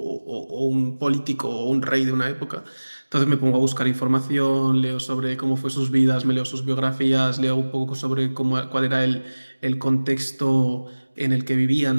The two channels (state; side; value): inverted; both; correlation -1.00